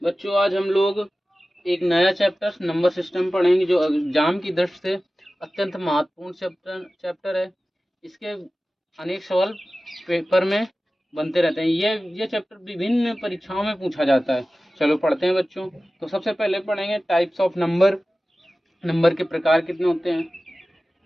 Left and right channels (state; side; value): normal; both; correlation 0.96